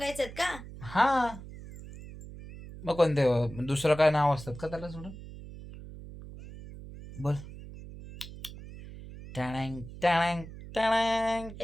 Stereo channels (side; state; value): right; noise; hum, 14 dB below the sound